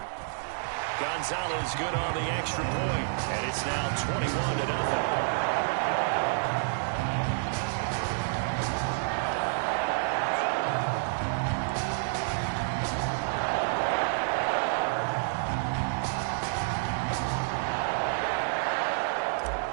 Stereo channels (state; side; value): silent; left; digital silence